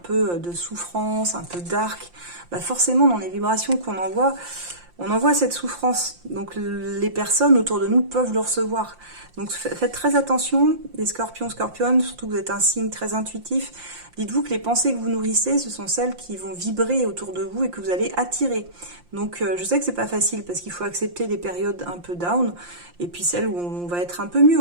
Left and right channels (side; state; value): left; late; 5.7 ms